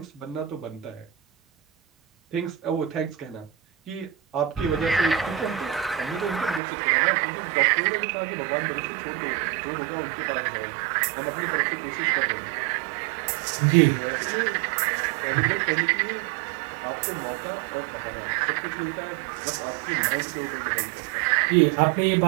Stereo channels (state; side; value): drops out; left; at 6.6 s